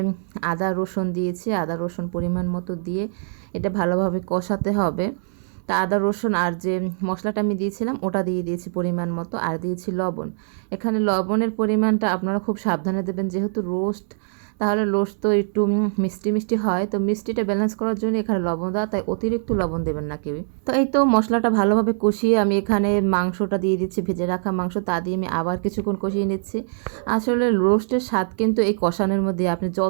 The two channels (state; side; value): silent; left; digital silence